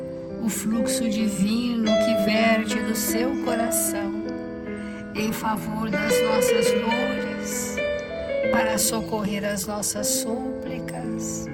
o fluxo divino que verte do seu coração em favor das nossas dores, para socorrer as nossas súplicas,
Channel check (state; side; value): identical; both; correlation 1.00